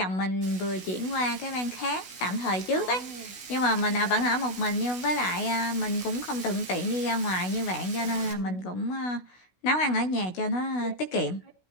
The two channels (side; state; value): right; late; 16 ms